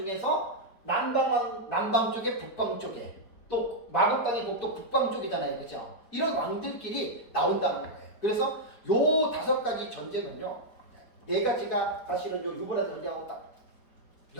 남방 쪽에 북방 쪽에 또 마곡 땅의 곡도 북방 쪽이잖아요. 그죠? 이런 왕들끼리 나온다는 거예요. 그래서 요 5가지 전쟁은요, 4가지가 사실은 요 유브라데 전쟁하고 딱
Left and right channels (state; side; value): late; right; 4.7 ms